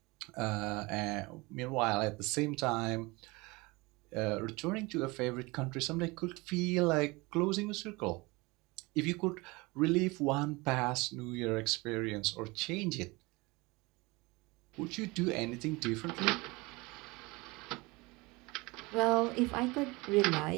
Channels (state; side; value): quieter; left; 24.2 dB